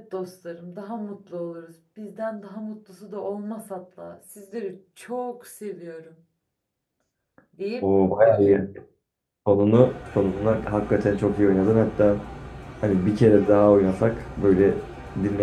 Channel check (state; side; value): identical; both; correlation 1.00